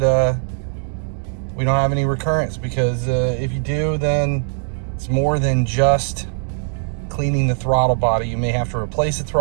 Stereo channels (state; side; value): silent; left; digital silence